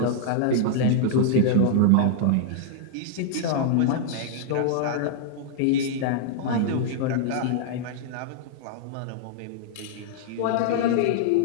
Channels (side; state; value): both; different; correlation -0.01